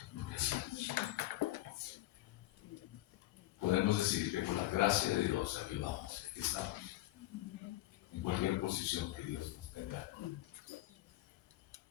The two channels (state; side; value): quieter; right; 16.7 dB